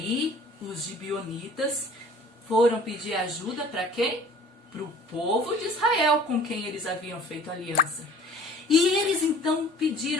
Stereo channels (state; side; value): normal; both; correlation 0.49